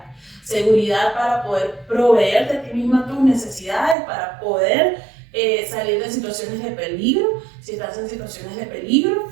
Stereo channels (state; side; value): drops out; left; at 4.0 s